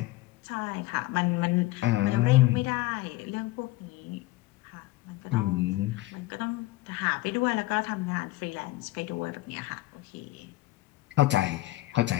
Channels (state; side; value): quieter; right; 18.2 dB